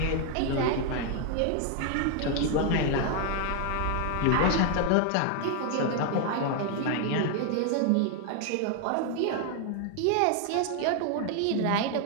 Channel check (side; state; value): both; different; correlation 0.00